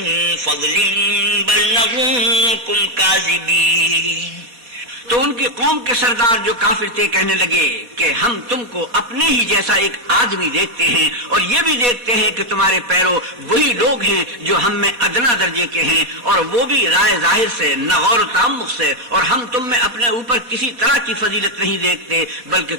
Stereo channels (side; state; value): left; late; 4.3 ms